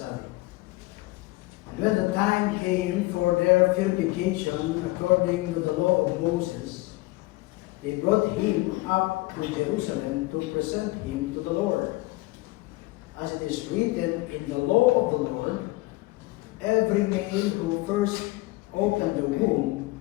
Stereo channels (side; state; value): right; quieter; 20.8 dB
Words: And when the time came for their purification according to the law of Moses, they brought him up to Jerusalem to present him to the Lord. As it is written in the law of the Lord, every male who first opened the womb